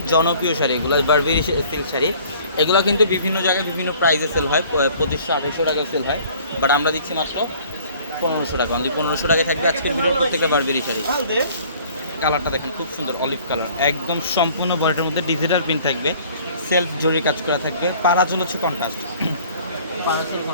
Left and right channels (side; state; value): both; inverted; correlation -0.53